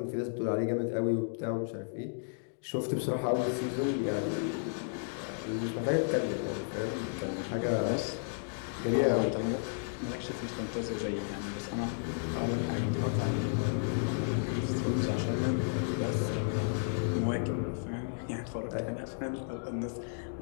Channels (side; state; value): right; silent; digital silence